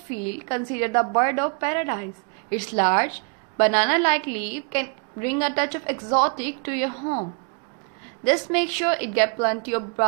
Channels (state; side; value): quieter; left; 36.6 dB